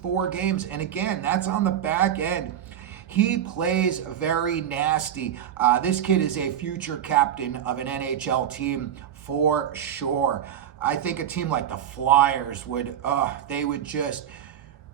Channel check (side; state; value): left; quieter; 9.8 dB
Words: games. And again, that's on the back end. He plays very nasty. This kid is a future captain of an NHL team for sure. I think a team like the Flyers would,